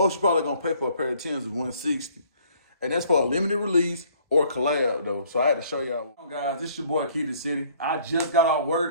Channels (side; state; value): both; inverted; correlation -0.59